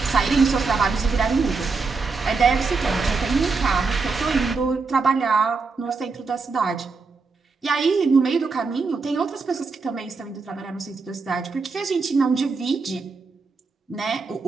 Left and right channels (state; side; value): quieter; left; 4.4 dB